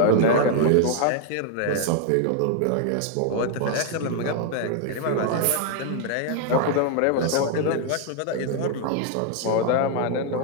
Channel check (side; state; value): both; different; correlation 0.00